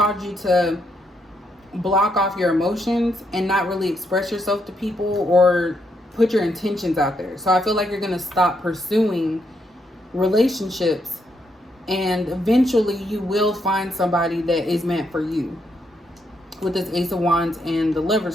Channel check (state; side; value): normal; both; correlation 0.77